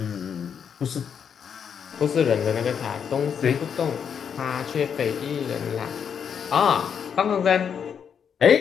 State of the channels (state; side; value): quieter; right; 7.5 dB